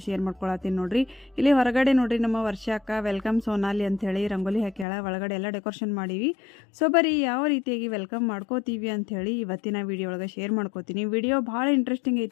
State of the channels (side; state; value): right; drops out; at 4.9 s